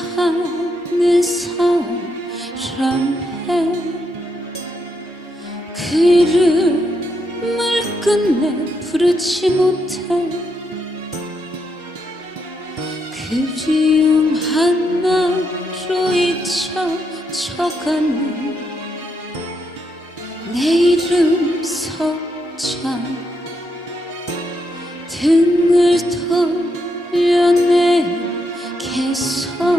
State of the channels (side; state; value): both; normal; correlation 0.80